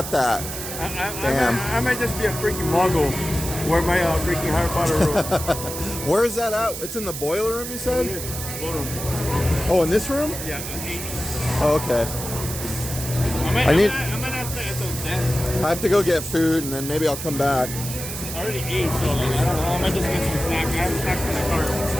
that. Damn. I might just be a freaking muggle. Wear my freaking Harry Potter robe. Where is that at? It's in the boiler room, you said? Ballroom. Oh, in this room? Yeah, 8. Oh, okay. I might not stay until 10. I have to go get food, and then maybe I'll come back. I already ate, so like, I don't know. I might just get some snack. I have snacks in the car.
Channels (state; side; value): noise; right; hiss, 7 dB below the sound